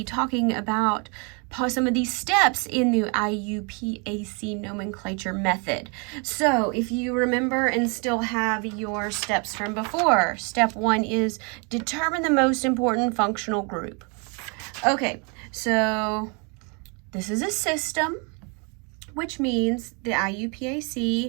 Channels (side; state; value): left; quieter; 34.0 dB